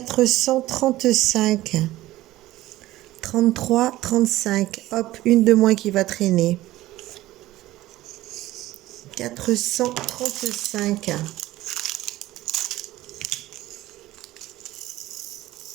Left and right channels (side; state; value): left; quieter; 16.3 dB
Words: 33, 35. Hop, une de moins qui va traîner. 435.